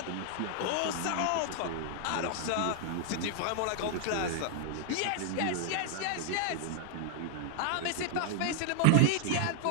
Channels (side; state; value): both; different; correlation 0.00